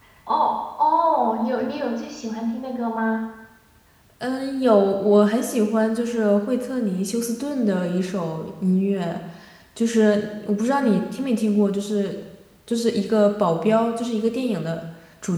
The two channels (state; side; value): identical; both; correlation 1.00